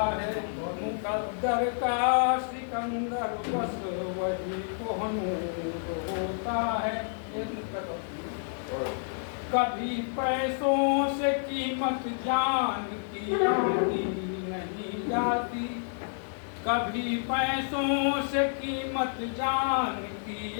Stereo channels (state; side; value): silent; right; digital silence